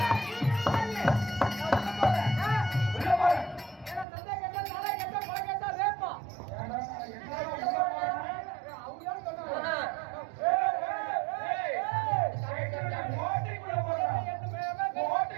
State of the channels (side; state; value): left; drops out; at 4.0 s